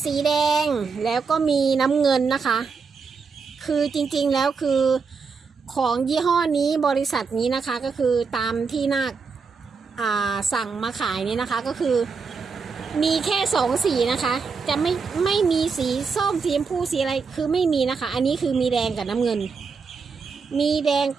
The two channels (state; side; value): quieter; left; 5.2 dB